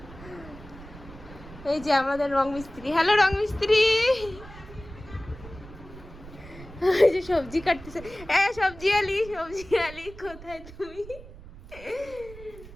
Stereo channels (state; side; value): noise; right; rumble, 17 dB below the sound